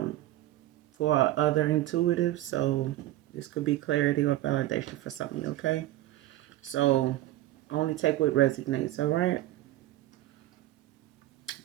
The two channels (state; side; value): quieter; left; 15.2 dB